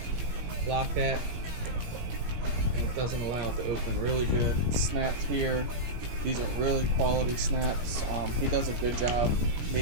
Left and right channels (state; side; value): late; left; 17 ms